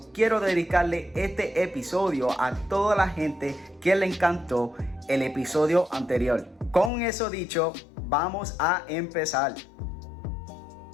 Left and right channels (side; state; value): right; drops out; at 6.9 s